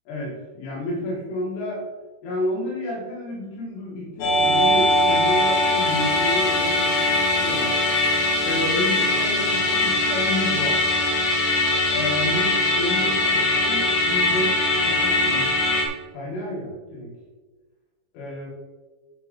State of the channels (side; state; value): right; late; 21 ms